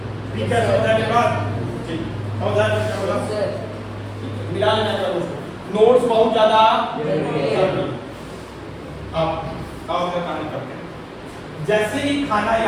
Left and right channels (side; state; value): both; identical; correlation 1.00